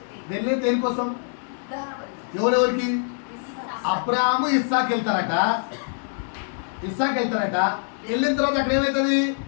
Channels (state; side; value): silent; right; 61 dB below the other